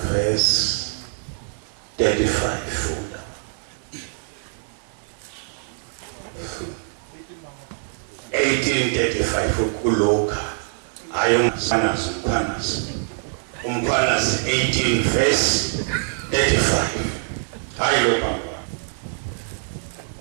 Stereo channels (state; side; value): silent; left; 63 dB below the other